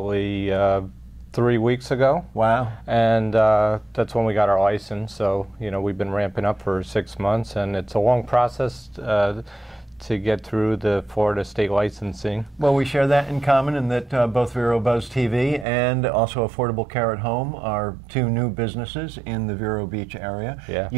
3 weeks ago. Wow. And that's when we got our license. So, you know, we've been ramping up for 6 months, and it's a long process to get through the Florida state licensing. Well, we share that in common in that both Vero Buzz TV and also Affordable Care at Home are two new businesses in the Vero Beach area. Yeah.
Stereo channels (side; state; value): left; drops out; at 15.7 s